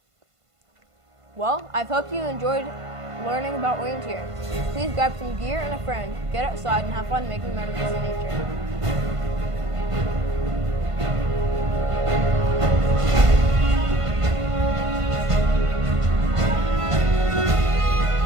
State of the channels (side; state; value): left; late; 1.5 ms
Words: Well, I hope you enjoyed learning about orienteering. Please grab some gear and a friend, get outside and have fun making memories in nature.